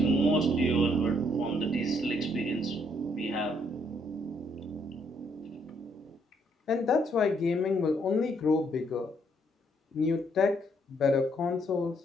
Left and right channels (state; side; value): normal; both; correlation 0.70